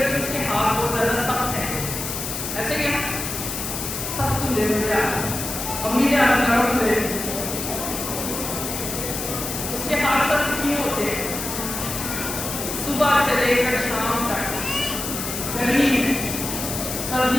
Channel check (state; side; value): noise; left; hiss, 5 dB below the sound